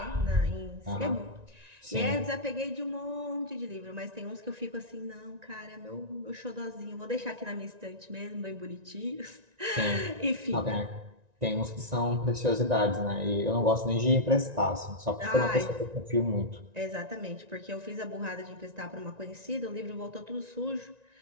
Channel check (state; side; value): late; left; 1.9 ms